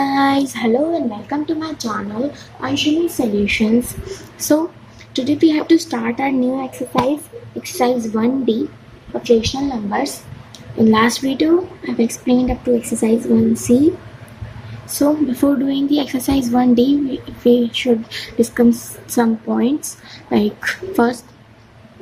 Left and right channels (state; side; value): identical; both; correlation 1.00